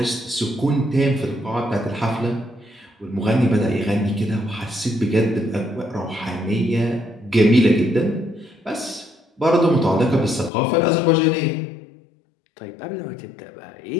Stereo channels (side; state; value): right; drops out; at 10.5 s